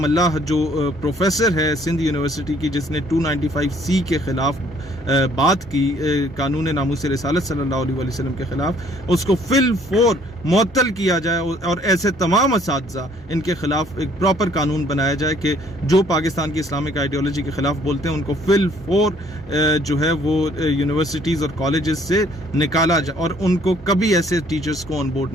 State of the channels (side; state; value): both; normal; correlation 0.61